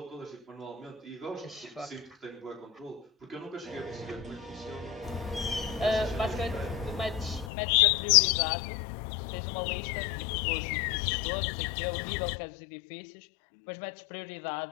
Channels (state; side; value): drops out; right; at 7.5 s